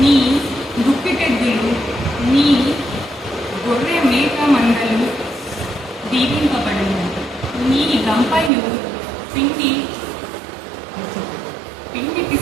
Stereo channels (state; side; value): drops out; left; at 8.5 s